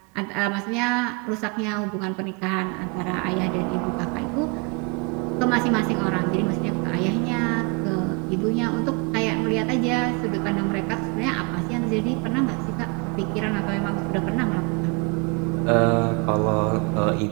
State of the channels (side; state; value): left; quieter; 30.9 dB